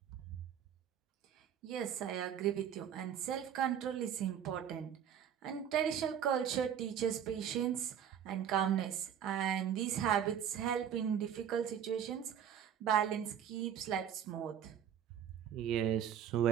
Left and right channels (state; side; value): quieter; left; 9.1 dB